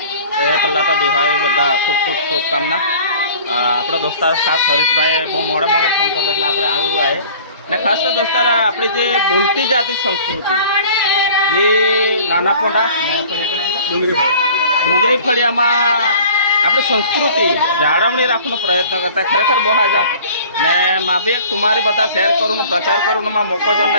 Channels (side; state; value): both; inverted; correlation -0.47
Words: પહેલાં તો દિવાળી બધા ખૂબ ખૂબ શુભકામના। આપણા દોસ્તાર ખાસ હરીશભાઈએ બહુ મોડે ફોન કર્યો એટલે આપણે આવ્યું આવે ને ખાસ તો દોસ્તાર આપણી જે બોલતી જાતી સંસ્કૃતિ જે નાના પોંડા ડુંગરી ફળિયામાં આપણી સંસ્કૃતિ જાળવણી રાખવાનો પ્રયત્ન કરતા ખરેખર બહુ હાજા ને માં બી એક તમારી બધા શેર કરવાનો પ્રચાર કરવાનો માં મોકો જો